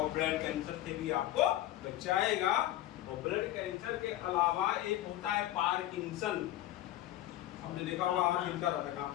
ब्लड कैंसर से भी आपको बचाएगा। और ब्लड कैंसर के अलावा एक होता है पार्किंसन, हमने देखा होगा हाथ हिलता रहता है,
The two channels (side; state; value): right; quieter; 14.1 dB